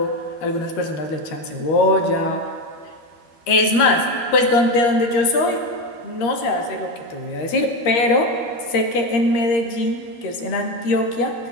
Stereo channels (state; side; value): late; right; 13 ms